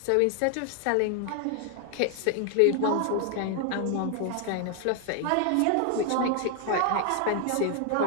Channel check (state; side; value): different; both; correlation 0.00